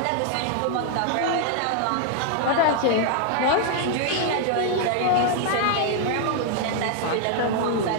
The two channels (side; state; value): both; different; correlation 0.00